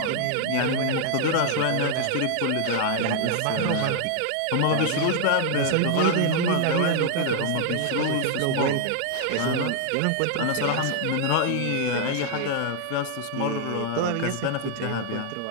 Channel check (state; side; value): different; both; correlation 0.00